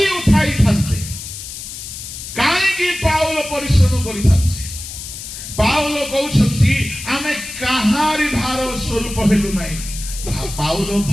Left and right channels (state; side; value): noise; left; hiss, 10 dB below the sound